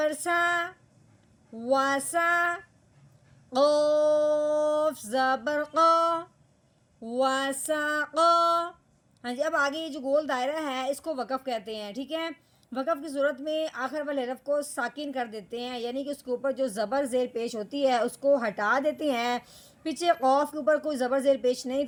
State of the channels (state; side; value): identical; both; correlation 1.00